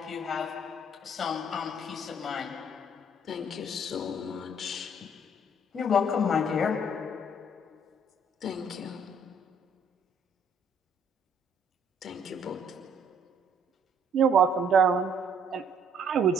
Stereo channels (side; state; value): both; normal; correlation 0.62